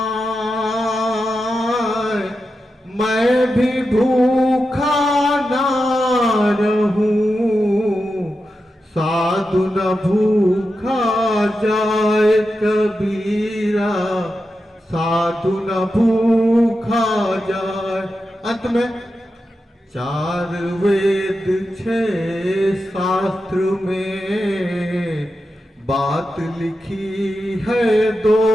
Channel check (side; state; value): both; normal; correlation 0.89